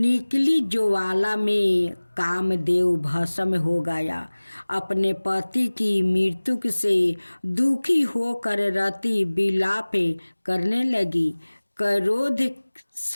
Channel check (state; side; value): inverted; both; correlation -1.00